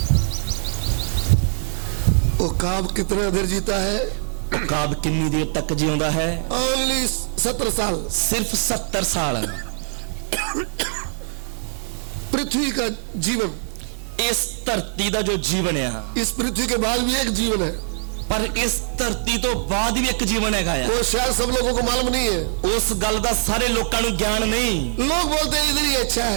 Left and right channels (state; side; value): silent; left; digital silence